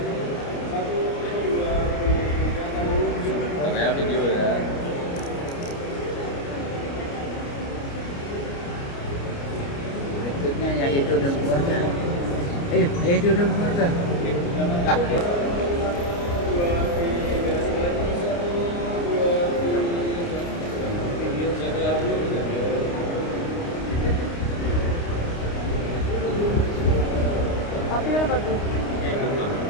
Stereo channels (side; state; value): right; late; 29 ms